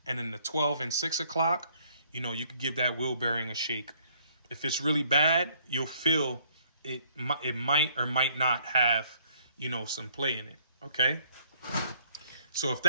and then the 12 and 6 o'clock, you know, you could give that wheel bearing a shake. If it's really bad, you'll feel it. It might or might not have, you know, some play in it. Okay. So if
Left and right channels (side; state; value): both; inverted; correlation -0.63